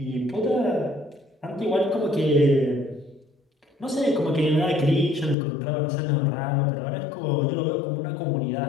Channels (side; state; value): right; drops out; at 5.4 s